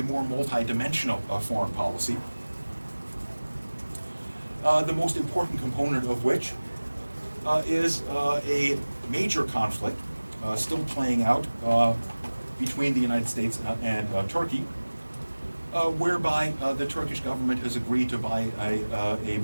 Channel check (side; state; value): both; inverted; correlation -1.00